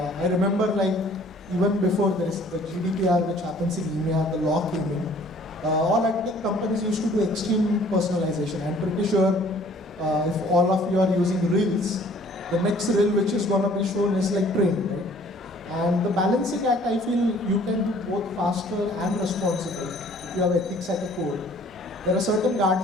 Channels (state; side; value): normal; both; correlation 0.55